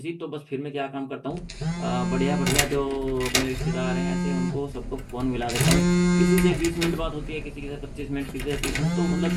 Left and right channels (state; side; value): identical; both; correlation 1.00